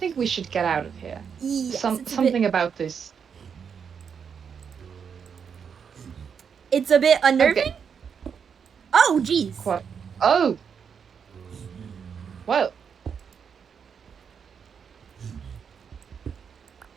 we should get out of here. Yes, it's Something about this. It's a bit unnerving. Okay. Oh, jeez. What? Oh. Well.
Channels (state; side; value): quieter; left; 6.8 dB